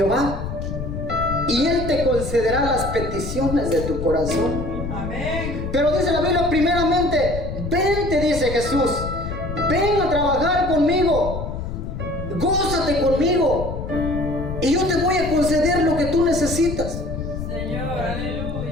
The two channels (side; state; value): left; noise; rumble, 6 dB below the sound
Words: y Él te concederá las peticiones de tu corazón. Amén. Pero dice la Biblia, primeramente, vente, dice Jesús, ven a trabajar conmigo, gózate conmigo, y yo te voy a conceder lo que tú necesitas. Señor,